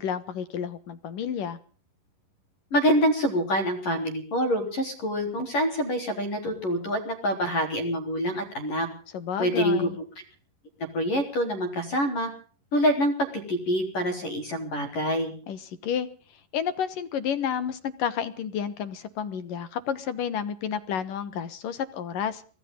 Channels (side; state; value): right; late; 11 ms